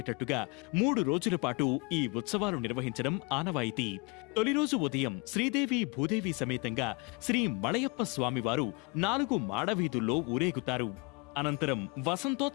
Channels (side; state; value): right; quieter; 29.9 dB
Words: 3 రోజుల పాటు ఈ ఉత్సవాలు నిర్వహించడం ఆనవాయితీ. తొలి రోజు ఉదయం శ్రీదేవి భూదేవి సమేతంగా శ్రీ మలయప్ప స్వామివారు 4 మాడవీధుల్లో ఊరేగుతారు. అనంతరం